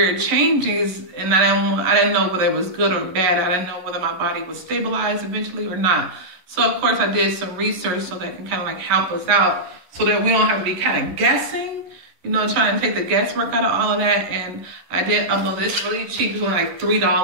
changes and I didn't know whether it was good or bad. I didn't know whether my body would stabilize eventually or not. So of course I did some research so that can kind of like help us out so that we don't have to be kind of guessing, trying to take the guesswork out of all of that. And I did upload this really cheap. It's only like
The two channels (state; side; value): late; left; 11 ms